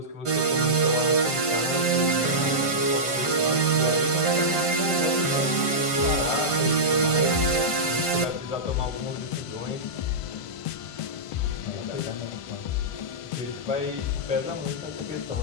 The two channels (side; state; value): right; late; 1.5 ms